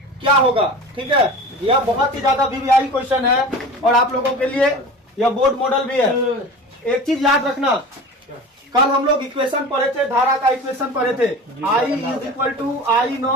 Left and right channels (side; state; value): both; normal; correlation 0.35